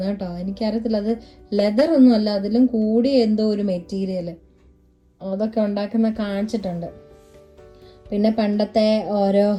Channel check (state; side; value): identical; both; correlation 1.00